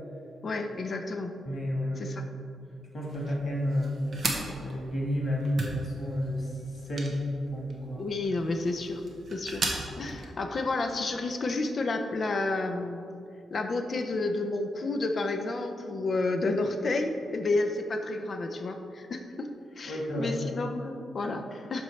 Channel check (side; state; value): both; normal; correlation 0.85